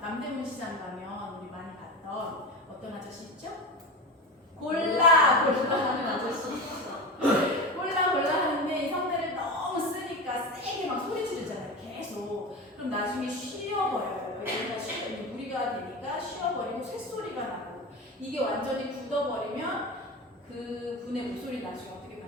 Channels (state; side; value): normal; both; correlation 0.25